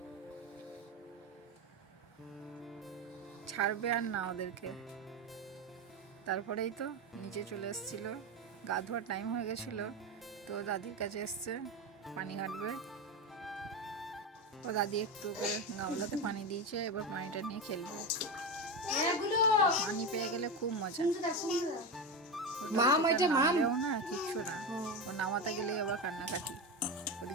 ছাড়বে আর না ওদেরকে। তারপরেই তো নিচে চলে এসেছিল, গা ধোয়ার টাইম হয়ে গেছিল, তো দাদির কাছে এসছে পানি ঘাটবে। ও দাদি একটু করে গামলাতে পানি দিয়েছে, এবার পানিটা নিয়ে খেলবে। পানি পেয়ে গেলে খুব মজা। নামলেও না কিচ্ছু না, ও নামাতে গেলেই আবার কান্নাকাটি।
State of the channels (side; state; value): both; normal; correlation 0.17